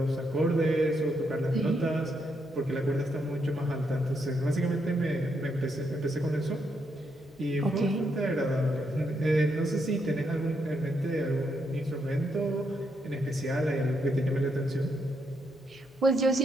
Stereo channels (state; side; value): normal; both; correlation 0.78